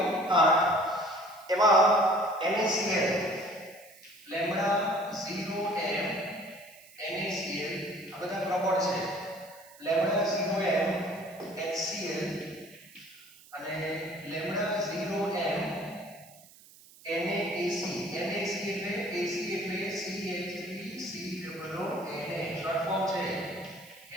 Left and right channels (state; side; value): noise; right; hiss, 23 dB below the sound